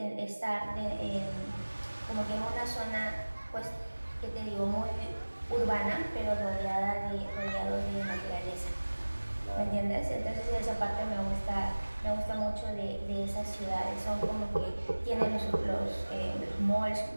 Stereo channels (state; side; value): inverted; both; correlation -1.00